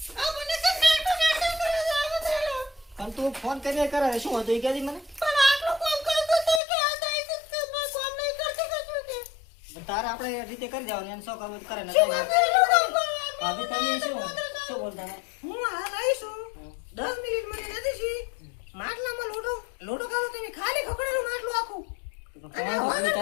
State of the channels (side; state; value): right; drops out; at 6.6 s